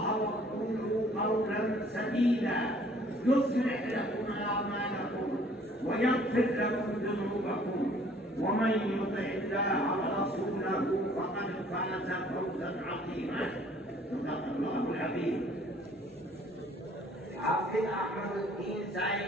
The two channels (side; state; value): both; normal; correlation 0.57